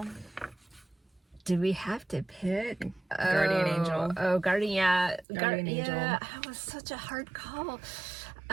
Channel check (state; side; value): drops out; left; at 5.2 s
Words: Do we have to pick? Guardian angel. Oh, guardian angel. Yeah, that was such a hard call.